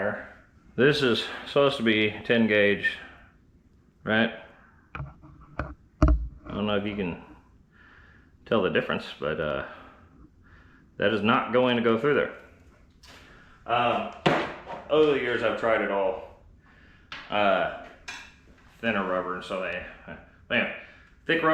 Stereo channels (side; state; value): both; identical; correlation 1.00